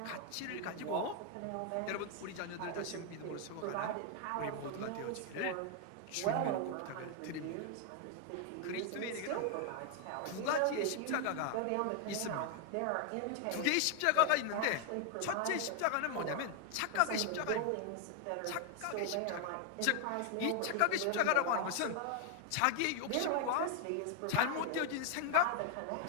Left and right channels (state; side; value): different; both; correlation 0.00